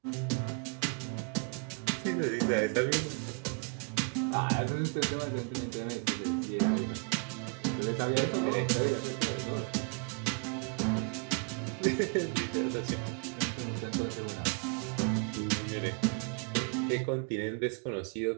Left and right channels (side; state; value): left; quieter; 35.6 dB